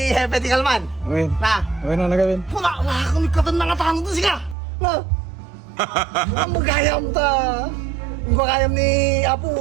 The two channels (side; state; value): left; drops out; at 4.5 s